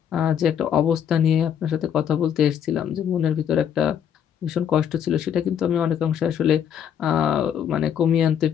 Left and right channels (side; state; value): right; quieter; 8.8 dB